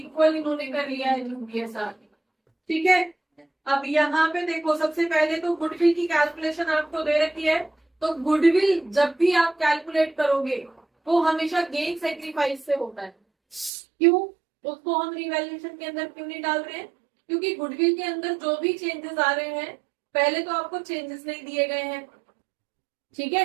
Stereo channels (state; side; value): drops out; left; at 13.7 s